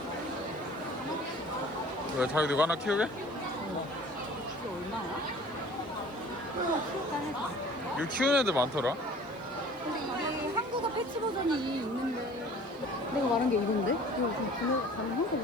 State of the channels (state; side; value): noise; right; hiss, 29 dB below the sound